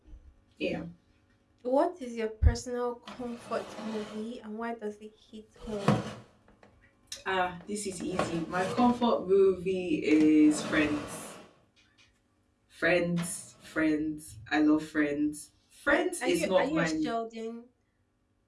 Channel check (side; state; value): both; identical; correlation 1.00